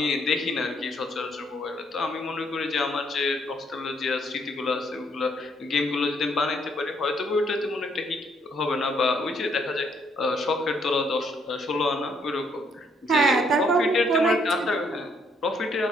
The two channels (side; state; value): both; normal; correlation 0.70